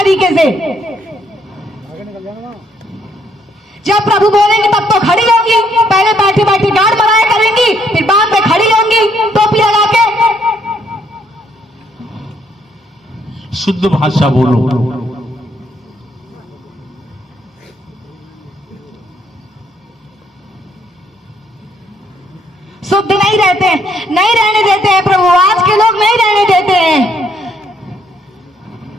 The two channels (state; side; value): normal; both; correlation 0.70